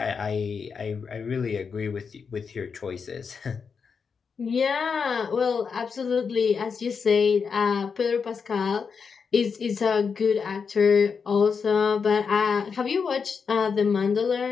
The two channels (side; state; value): right; quieter; 5.8 dB